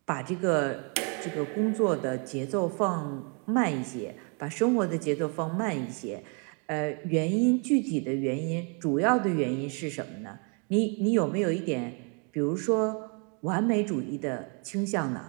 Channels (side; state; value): left; quieter; 37.6 dB